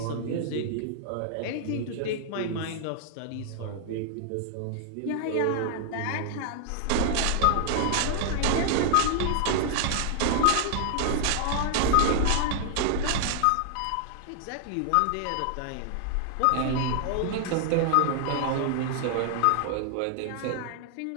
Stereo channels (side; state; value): both; different; correlation 0.00